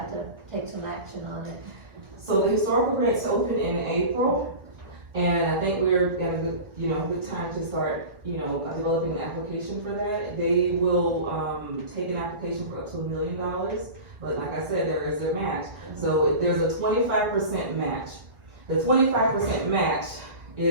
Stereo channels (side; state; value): left; late; 1.6 ms